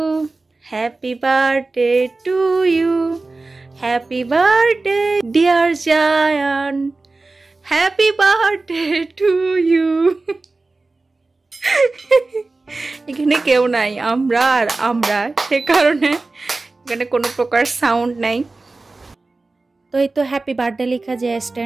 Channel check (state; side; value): quieter; left; 3.4 dB